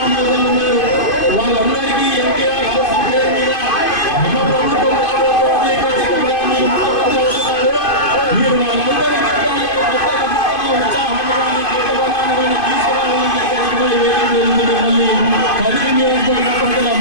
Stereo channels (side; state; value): right; late; 2.5 ms